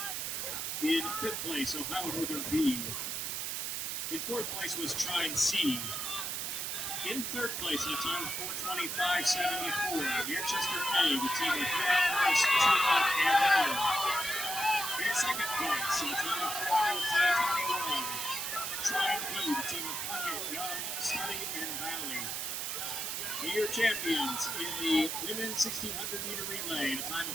In 5th place, Ohio Northern B. In 4th place was Trine C. In 3rd place, at a time of 4:25.74, Manchester A, the team of Norris, Truman, and Miller. In 2nd place, at a time of 4:14.21, Trine B, the team of Puckett, Young, Study, and Valley. And your champions in the women's 1600 meter relay, at a time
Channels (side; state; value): right; noise; hiss, 2 dB below the sound